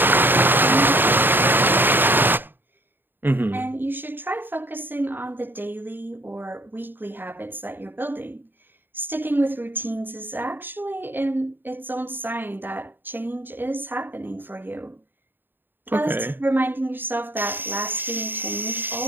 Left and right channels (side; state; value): left; late; 0.094 ms